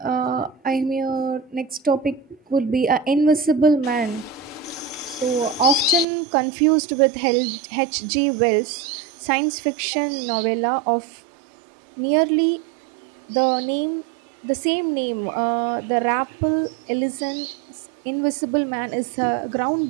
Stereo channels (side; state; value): left; drops out; at 6.1 s